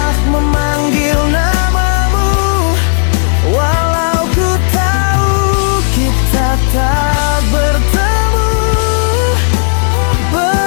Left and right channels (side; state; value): right; silent; digital silence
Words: memanggil namamu, walau ku tahu kita tak bertemu.